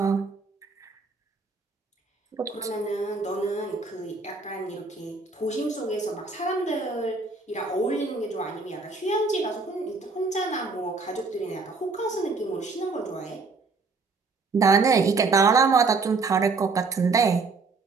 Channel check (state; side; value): quieter; left; 4.2 dB